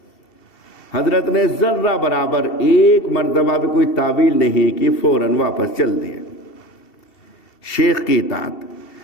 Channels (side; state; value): right; late; 2.7 ms